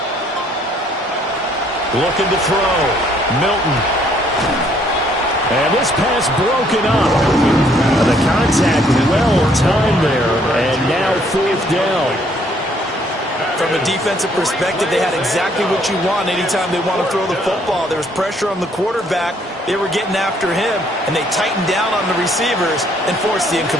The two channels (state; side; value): normal; both; correlation 0.65